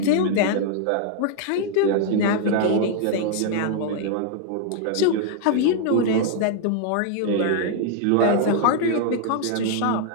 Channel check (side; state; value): both; different; correlation 0.00